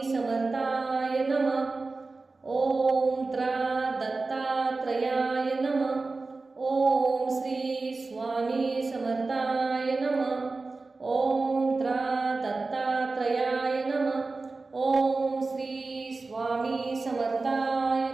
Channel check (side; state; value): left; quieter; 3.7 dB